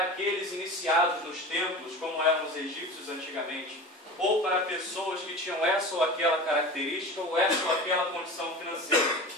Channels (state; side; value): normal; both; correlation 0.33